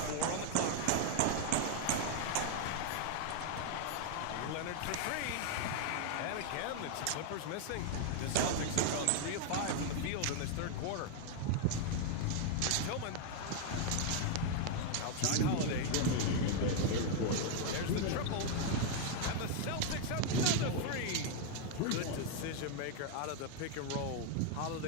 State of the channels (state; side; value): different; both; correlation 0.00